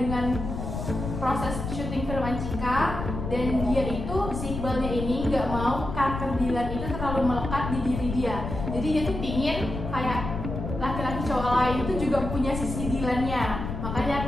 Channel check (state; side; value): noise; left; rumble, 6 dB below the sound